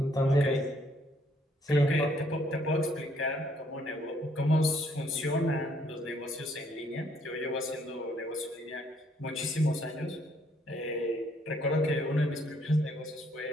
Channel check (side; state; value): both; normal; correlation 0.67